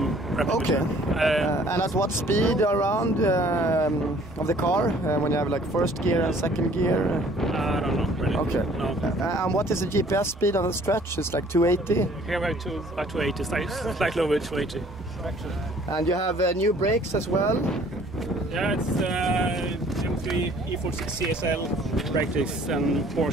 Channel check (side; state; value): both; normal; correlation 0.56